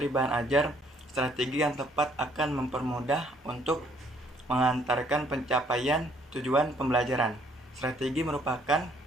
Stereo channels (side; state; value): both; normal; correlation 0.64